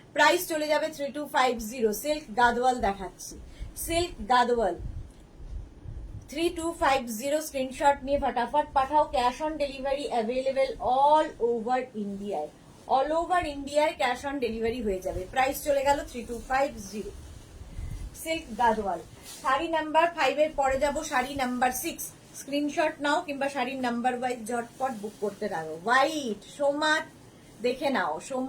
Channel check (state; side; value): identical; both; correlation 1.00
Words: প্রাইস চলে যাবে 3250, সিল্ক গাদোয়াল দেখাচ্ছি, সিল্ক গাদোয়াল 3250। স্ক্রিনশট নিয়ে ফটাফট পাঠাও, cash on delivery available all over ইন্ডিয়ায়, অল ওভার ইন্ডিয়ায় ক্যাশ অন ডেলিভারি হয়ে যাবে। প্রাইস চলে গেল 3250, সিল্ক গাদোয়াল। শাড়ি নাম্বার 5 এর পরে যাব শাড়ি নাম্বার 6, স্ক্রিনশট নাও কিংবা শাড়ির নাম্বার ওয়াইজ ঝটপট বুক করতে থাকো। হোয়াইট সোমা দেখে নাও,